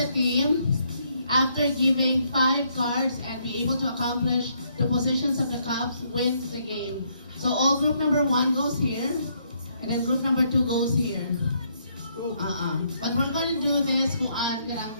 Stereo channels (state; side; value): inverted; both; correlation -0.72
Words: team, after giving 5 cards and be able to accomplish the positions of the cups, wins the game. So all group number 1 goes here, and then group number 2 goes here. But we're going to do this kung